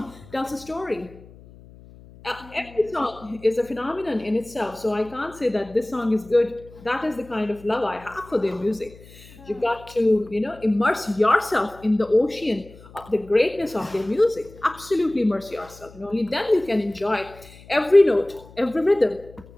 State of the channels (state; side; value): noise; left; hum, 21 dB below the sound